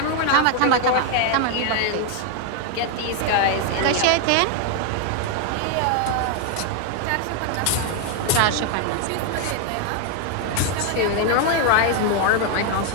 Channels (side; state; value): both; different; correlation 0.00